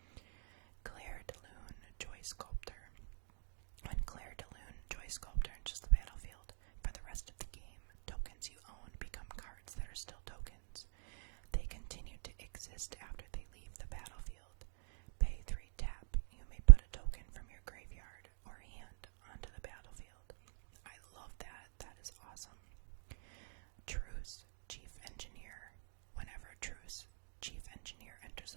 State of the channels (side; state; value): left; silent; digital silence